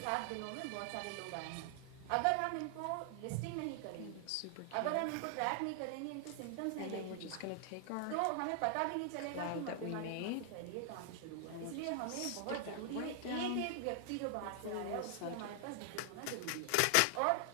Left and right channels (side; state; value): both; different; correlation 0.00